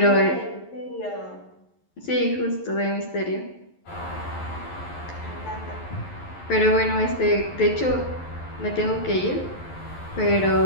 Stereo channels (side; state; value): right; late; 11 ms